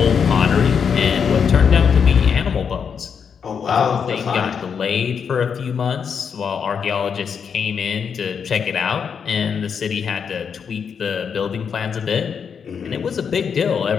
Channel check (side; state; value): right; quieter; 6.8 dB